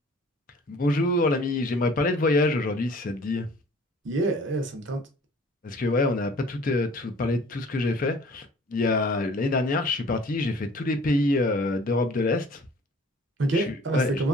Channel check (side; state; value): both; normal; correlation 0.51